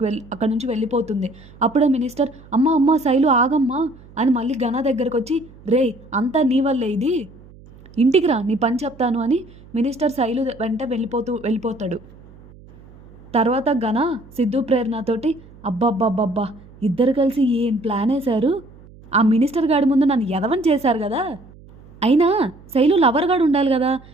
నుంచి వెళ్ళిపోతుంది. అప్పుడే మినిస్టర్, అమ్మ అమ్మ శైలు ఆగమ్మా అని మళ్ళీ గన దగ్గరకు వచ్చి, రే అంతా నీ వల్లే ఇది, ఇంటికి రా నీ పని చెప్తాను అని మినిస్టర్ శైలు వెంట వెళ్ళిపోతాడు. తర్వాత గన సిద్ధు ప్రేరణతోటి, అబ్బబ్బబ్బబ్బా ఇద్దరు కలిసి ఏం ప్లాన్ వేశారు, ఆ మినిస్టర్ గాడి ముందు నన్ను ఎదవని చేశారు కదా, అయినా శైలు లవర్ గాడు ఉండాలి కదా,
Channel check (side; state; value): right; noise; hum, 22 dB below the sound